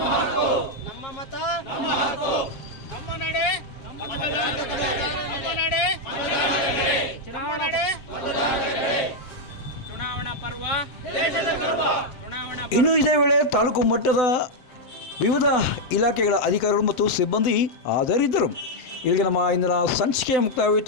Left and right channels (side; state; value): right; late; 7.5 ms